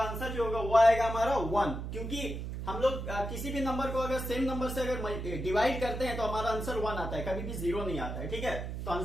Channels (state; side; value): noise; right; hum, 6 dB below the sound